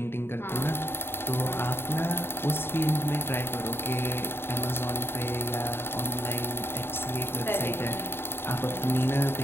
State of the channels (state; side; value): late; right; 0.11 ms